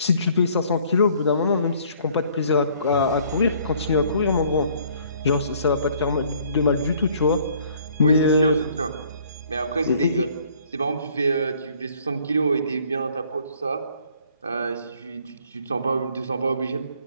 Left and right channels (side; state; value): both; inverted; correlation -0.59